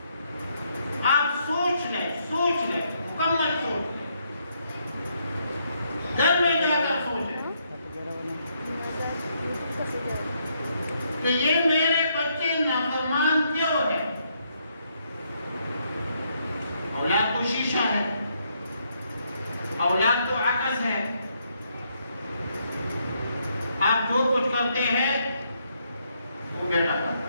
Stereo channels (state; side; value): inverted; both; correlation -0.75